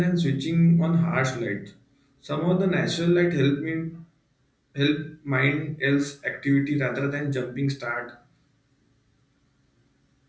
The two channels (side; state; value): both; identical; correlation 1.00